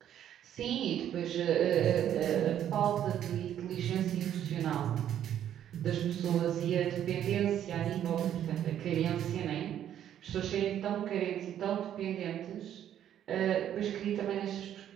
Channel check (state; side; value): quieter; left; 10.5 dB